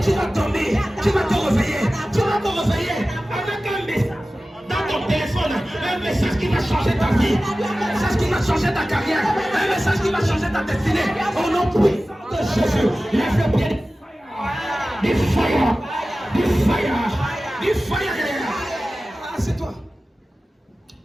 tu vas dormir, tu vas te réveiller. Tu vas te réveiller avec un message dans ton téléphone. Un message qui va changer ta vie. Un message qui va changer ta carrière. Un message qui va changer ta destinée. Au nom puissant de Jésus, lève le pied. Du fire. Du fire. Du fire. C'est toi.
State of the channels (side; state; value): both; normal; correlation 0.96